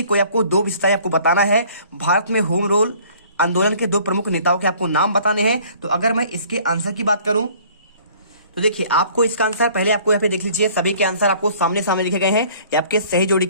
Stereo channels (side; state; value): both; inverted; correlation -0.54